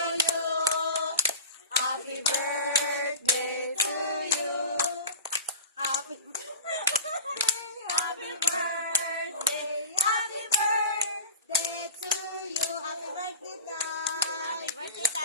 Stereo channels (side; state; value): both; inverted; correlation -0.32